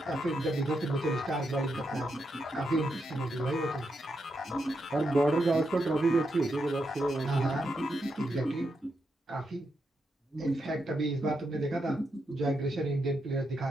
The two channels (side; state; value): both; normal; correlation 0.83